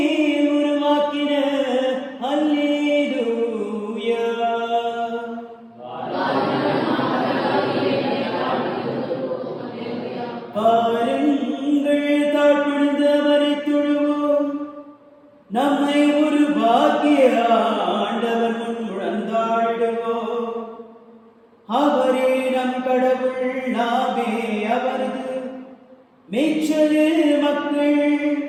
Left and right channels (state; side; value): identical; both; correlation 1.00